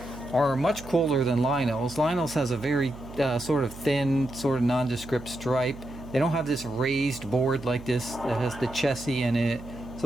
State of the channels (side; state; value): right; noise; hum, 15 dB below the sound